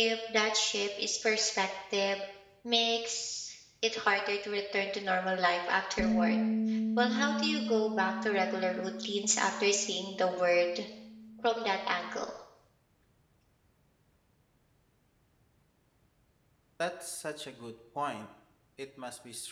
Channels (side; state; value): both; identical; correlation 1.00